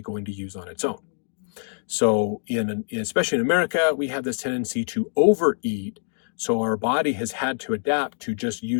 going to use on its own. So especially in America, we have this tendency to overeat. So our body has had to adapt to just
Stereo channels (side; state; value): right; silent; digital silence